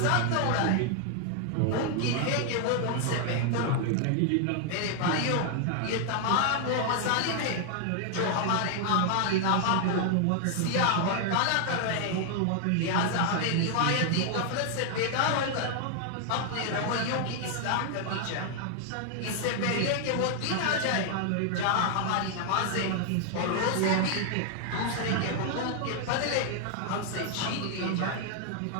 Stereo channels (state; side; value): different; both; correlation 0.00